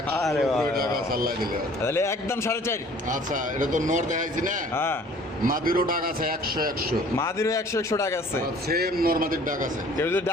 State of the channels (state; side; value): normal; both; correlation 0.52